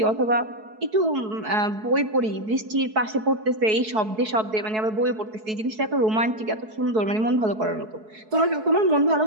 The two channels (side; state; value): left; late; 4.6 ms